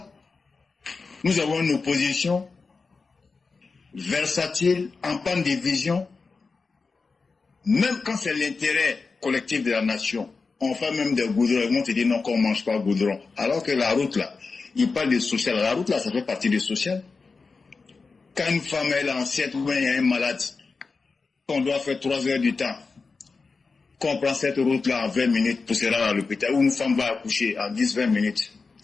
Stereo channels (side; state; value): right; quieter; 4.4 dB